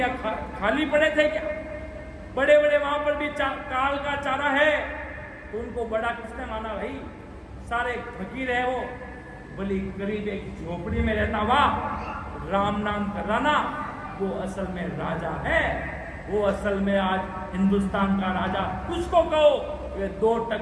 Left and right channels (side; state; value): both; identical; correlation 1.00